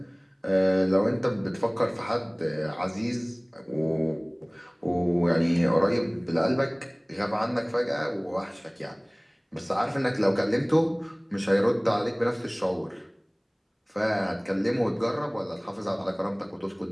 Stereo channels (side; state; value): both; identical; correlation 1.00